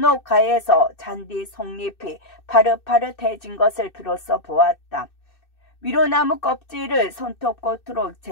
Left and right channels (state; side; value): late; right; 2.6 ms